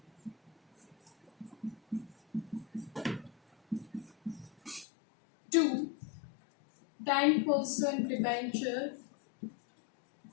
Two, 10% debenture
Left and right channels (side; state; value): right; drops out; at 4.9 s